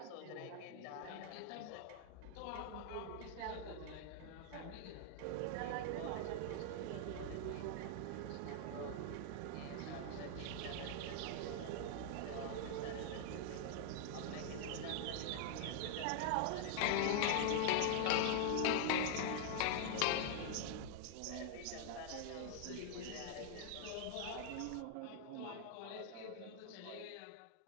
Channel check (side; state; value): both; different; correlation 0.00